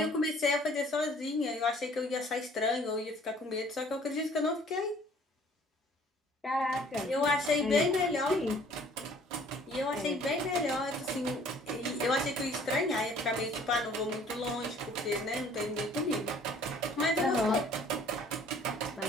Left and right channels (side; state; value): both; normal; correlation 0.55